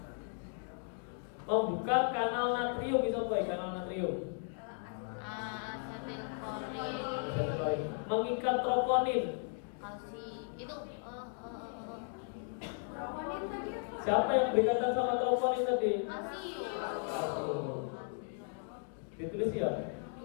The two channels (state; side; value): silent; right; 54 dB below the other